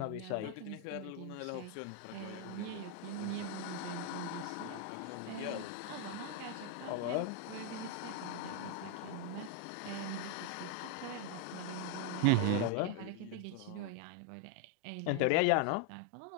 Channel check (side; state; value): both; different; correlation 0.00